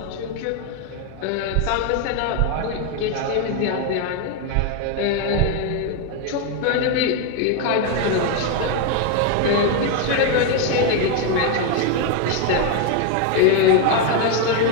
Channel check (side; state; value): both; different; correlation 0.01